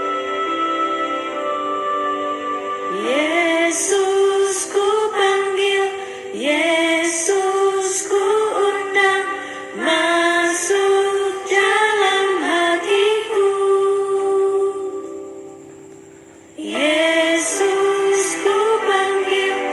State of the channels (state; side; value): identical; both; correlation 1.00